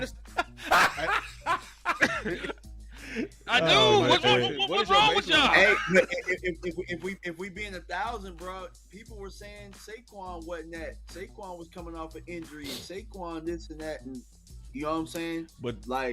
I do. Oh, What's man. what's wrong with y'all? Hey, but if we being 1,000, bro, people were saying Saquon wasn't that. Saquon was coming off an injury. Saquon this and that, and you know what I'm saying? But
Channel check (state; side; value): identical; both; correlation 1.00